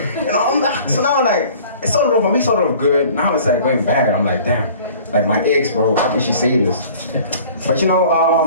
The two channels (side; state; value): both; inverted; correlation -0.48